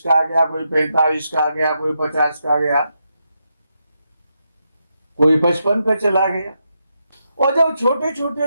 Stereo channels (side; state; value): both; inverted; correlation -0.84